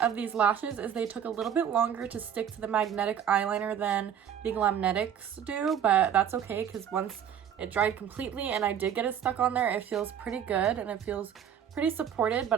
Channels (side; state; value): left; quieter; 8.9 dB